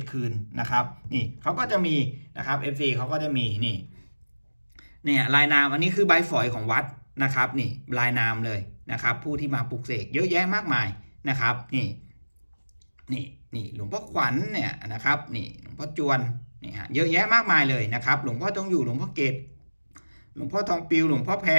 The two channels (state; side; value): inverted; both; correlation -1.00